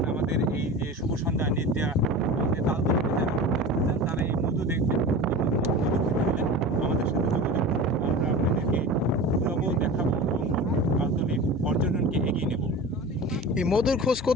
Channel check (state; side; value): normal; both; correlation 0.33